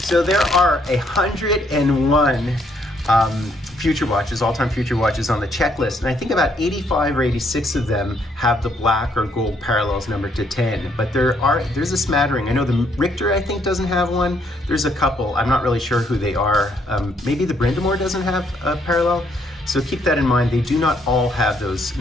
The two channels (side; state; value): both; normal; correlation 0.70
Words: there are 101 Future Watches, all-time Future Watches on the checklist, and I think about 85 or 86 of them have the black or gold parallels number /10, but there's a smattering. I know the Richter, I think, doesn't have one. There's a couple. I'm not really sure who they are. Maybe the Brindamore doesn't have a parallel, so keep that in mind. They do not all have those